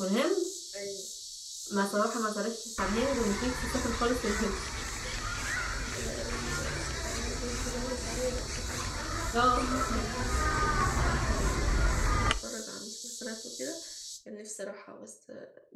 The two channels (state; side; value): identical; both; correlation 1.00